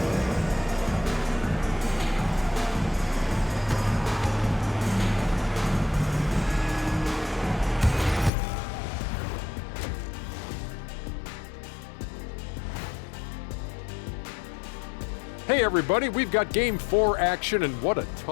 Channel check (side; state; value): right; drops out; at 8.3 s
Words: Hey everybody, we've got Game 4 action, and what a